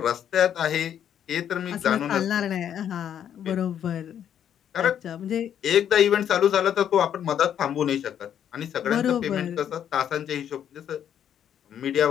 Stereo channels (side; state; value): right; quieter; 9.5 dB